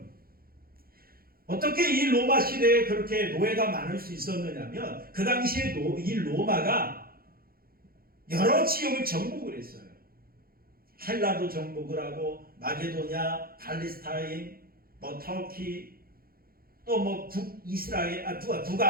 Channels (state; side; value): late; left; 0.43 ms